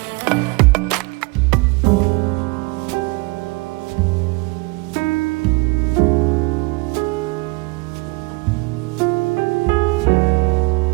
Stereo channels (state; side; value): quieter; left; 26.4 dB